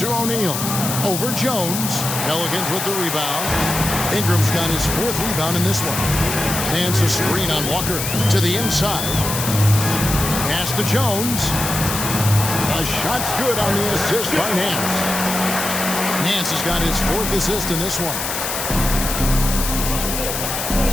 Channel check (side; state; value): left; noise; hiss, 3 dB below the sound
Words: O'Neal. Over Jones. Pelicans with the rebound. Ingram's got his 4th rebound in this one. Hands a screen on Walker to the inside. Pass to Jones. A shot's good on the assist by Nance. Nance has got his 4th assist in this one.